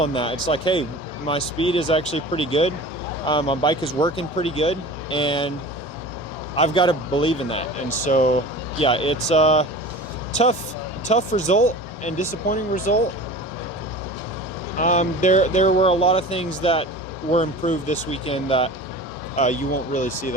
that. It's hey, my speed is actually pretty good. My bike is working pretty good, and I've got to believe in that. And so, yeah, it's a tough result and disappointing result. There were a lot of things that were improved this weekend that you won't really see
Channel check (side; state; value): both; normal; correlation 0.37